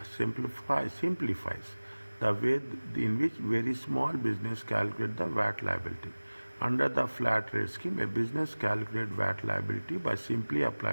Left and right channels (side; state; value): both; inverted; correlation -1.00